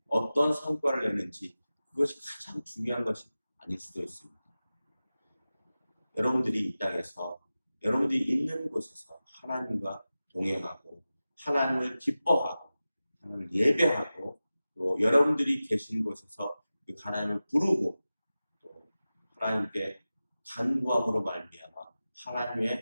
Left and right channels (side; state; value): both; inverted; correlation -0.95